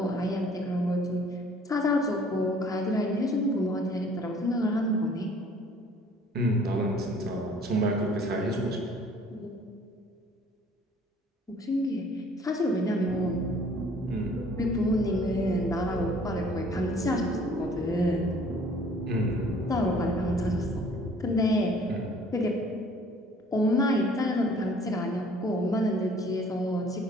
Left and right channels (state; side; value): normal; both; correlation 0.55